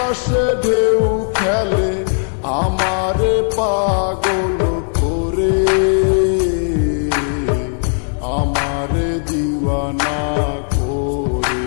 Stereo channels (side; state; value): right; silent; digital silence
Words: ঢেউ খেলে, আমারে পাগল করে, আমারে দিওয়ানা করে।